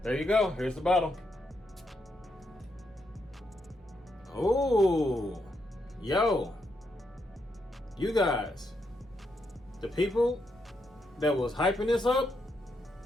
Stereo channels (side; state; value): both; normal; correlation 0.80